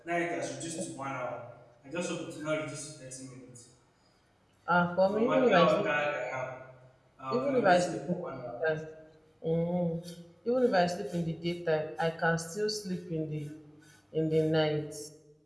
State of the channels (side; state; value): both; identical; correlation 1.00